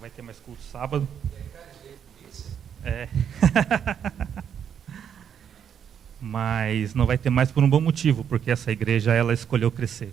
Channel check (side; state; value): left; quieter; 8.3 dB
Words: ter mais culto de sábado. É. Mas não vai ter mais por um bom motivo, porque essa igreja, ela escolheu crescer,